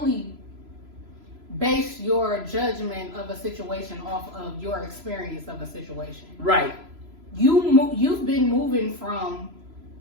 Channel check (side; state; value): left; late; 3.0 ms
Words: base your judgment of a situation off of your experience of a situation. Right. You've been moving from